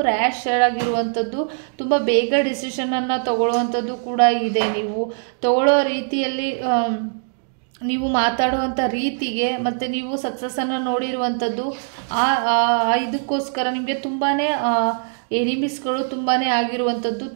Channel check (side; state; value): left; silent; digital silence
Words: ರ್ಯಾಶ್ ಆಗಿರುವಂಥದ್ದು, ತುಂಬ ಬೇಗ ಡಿಸಿಷನನ್ನು ತಗೊಳ್ಳುವಂಥದ್ದು ಕೂಡ ಇದೆ. ನೀವು ತಗೊಳ್ಳೋ ರೀತಿಯಲ್ಲಿ, ನೀವು ಮಾತಾಡುವಂಥ ರೀತಿಗೆ, ಮತ್ತು ನೀವು ಸಕ್ಸಸ್ಸನ್ನು ನೋಡಿರುವಂಥದ್ದು, ಇದಕ್ಕೋಸ್ಕರ ನಿಮಗೆ ತುಂಬಾ ಎನಿಮೀಸ್ಗಳು ತುಂಬಾ ಆಗಿರುವಂಥದ್ದು,